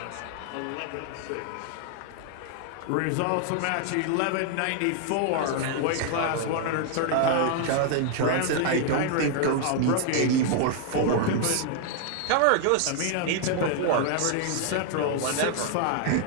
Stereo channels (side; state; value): both; different; correlation 0.00